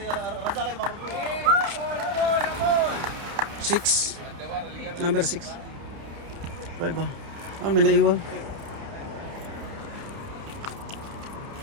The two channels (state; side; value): late; left; 30 ms